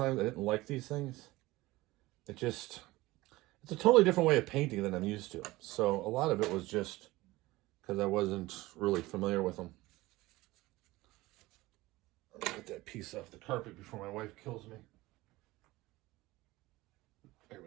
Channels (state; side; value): quieter; left; 19.3 dB